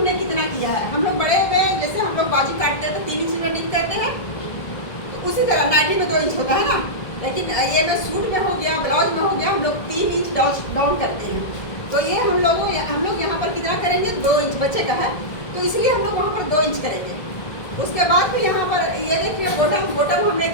कितना किया है, हम लोग बड़े में जैसे हम लोग बाजू काटते हैं तो 3 इंच में डीप करते हैं, तो उसी तरह नाइटी में 2 इंच होता है ना, लेकिन ये में सूट में हो गया, ब्लाउज में हो गया, हम लोग 3 इंच डाउन करते हैं। तो ये हम लोग यहाँ पर कितना करेंगे, 2 इंच बच्चे का है, तो इसलिए हम लोग वहाँ पर 2 इंच करेंगे। उसके बाद फिर यहाँ पर ये देखिए बॉटम हमने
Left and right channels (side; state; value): right; late; 1.7 ms